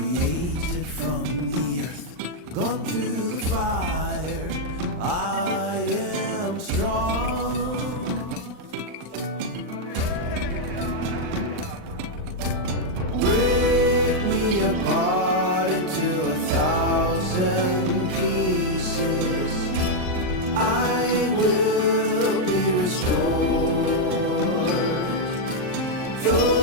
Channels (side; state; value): left; late; 39 ms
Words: from the earth, gone through the fire. I am strong. Break me apart into 1,000 pieces. I will be restored.